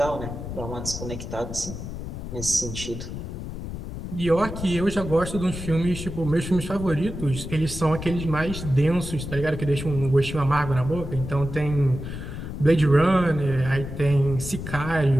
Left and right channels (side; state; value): left; noise; rumble, 8 dB below the sound